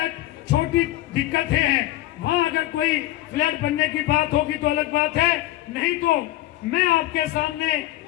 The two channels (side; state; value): right; quieter; 15.8 dB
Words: छोटी दिक्कतें हैं, वहाँ अगर कोई फ्लैट बनने की बात होगी तो अलग बात है। नहीं तो मैं आपके सामने